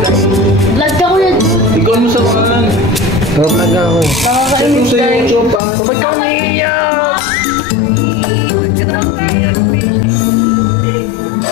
guys. Vlog ka ko yan. Ikaw mo sa kanan. Vlog ako. Nakakainis, guys. Ba't ka umiiyak?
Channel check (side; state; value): right; drops out; at 5.6 s